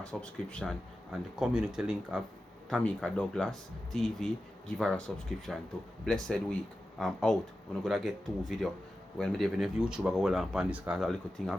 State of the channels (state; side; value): normal; both; correlation 0.93